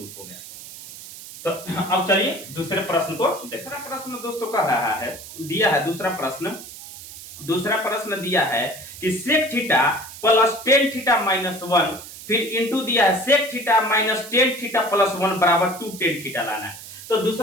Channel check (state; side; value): noise; right; hiss, 14 dB below the sound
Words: हो गया। तो अब चलिए दूसरे प्रश्न को। दूसरा प्रश्न दोस्तों कह रहा है दिया है दूसरा प्रश्न दिया है कि sec theta plus tan theta minus 1 फिर इंटू दिया है sec theta minus tan theta plus 1 बराबर 2 tan थीटा लाना है। तो